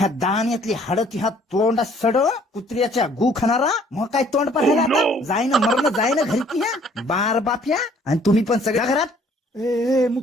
दाण्यातली हाड ती हात तोंडा सड कुत्र्याच्या गु खाणारा. मग काय तोंड पाहायला आता जाईन मरण जाईन घरी की ह्या बार बाप्या. आणि तुम्ही पण सगळ्या घरात ए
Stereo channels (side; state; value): both; normal; correlation 0.59